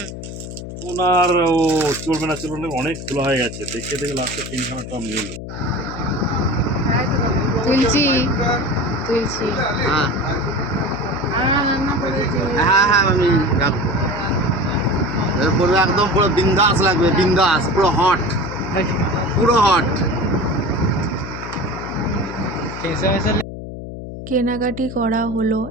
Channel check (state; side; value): noise; left; hum, 10 dB below the sound